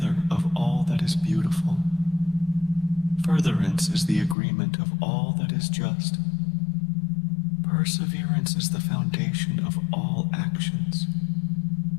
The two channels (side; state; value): right; drops out; at 4.4 s